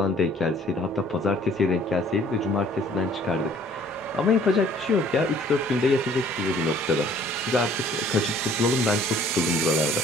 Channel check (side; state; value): both; normal; correlation 0.56